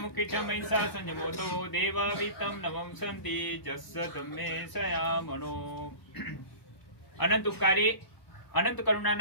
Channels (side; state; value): right; late; 1.0 ms